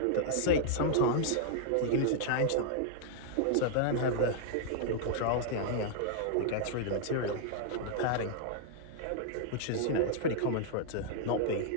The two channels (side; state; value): both; different; correlation -0.01